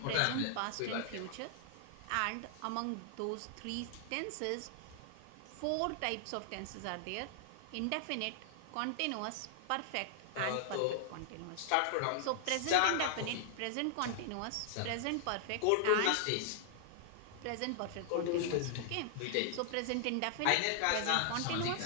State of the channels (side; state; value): both; different; correlation -0.01